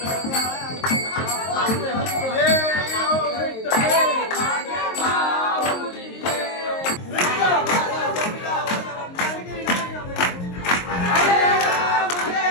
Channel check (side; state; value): right; late; 23 ms